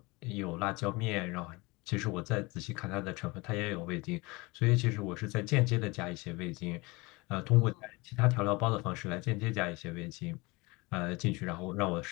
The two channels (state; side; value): quieter; right; 24.6 dB